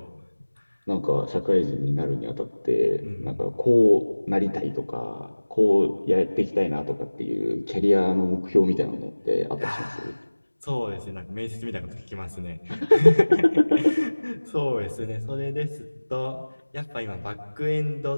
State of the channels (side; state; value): both; inverted; correlation -1.00